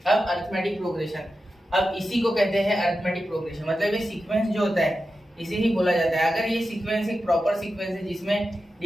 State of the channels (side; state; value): both; normal; correlation 0.91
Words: अब अरिथमेटिक प्रोग्रेशन, अब इसी को कहते हैं अरिथमेटिक प्रोग्रेशन। मतलब ये सीक्वेंस जो होता है इसे ही बोला जाता है। अगर ये सीक्वेंस एक प्रॉपर सीक्वेंस है जिसमें